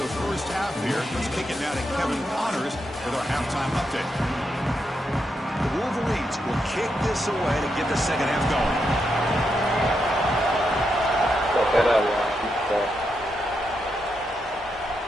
first half here. Let's kick it now to Kevin Connors with our halftime update. The Wolverines will kick this away to get the second half going.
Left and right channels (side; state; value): both; normal; correlation 0.83